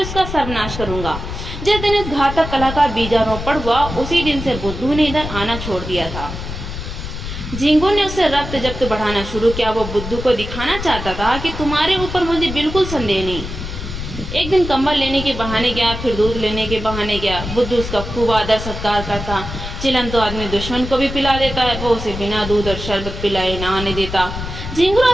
उसका सर्वनाश करूंगा। जिस दिन इस घातक कला का बीजारोपण हुआ, उसी दिन से बुद्धू ने इधर आना छोड़ दिया था। झिंगुर ने उससे रक्त जब्त बढ़ाना शुरू किया। वो बुद्धू को दिखाना चाहता था कि तुम्हारे ऊपर मुझे बिल्कुल संदेह नहीं। एक दिन कंबल लेने के बहाने गया, फिर दूध लेने के बहाने गया। बुद्धू उसका खूब आदर सत्कार करता। चिलम तो आदमी दुश्मन को भी पिला देता है, वो उसे बिना दूध और शरबत पिलाए ना आने देता। झिंगुर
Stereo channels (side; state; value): left; noise; rumble, 8 dB below the sound